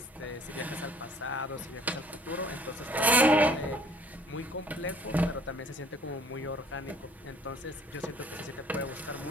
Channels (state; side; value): normal; both; correlation 0.55